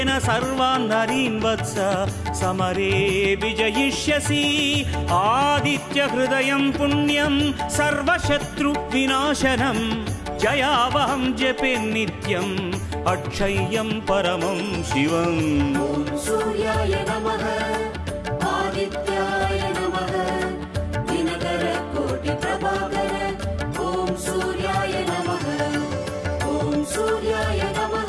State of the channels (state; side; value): identical; both; correlation 1.00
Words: सर्वान् नरीन् वत्स समरे विजयिष्यसि। आदित्यहृदयं पुण्यं सर्वशत्रुविनाशनं जयावहं जपे नित्यम् अक्षय्यं परमं शिवम्। ॐ सूर्याय नमः आदित्याय नमः दिनकर कोटि प्रभाकर ॐ सूर्याय नमः। ॐ सूर्याय